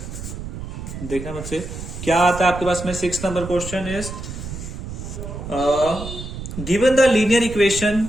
देखना बच्चे क्या आता है आपके पास में. 6th number question is given the linear equation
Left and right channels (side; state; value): right; noise; rumble, 9 dB below the sound